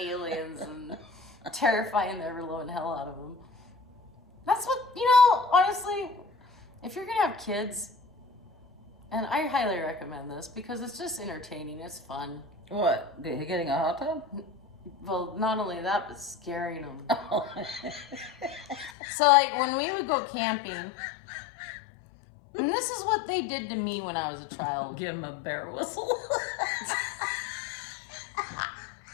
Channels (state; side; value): drops out; right; at 18.9 s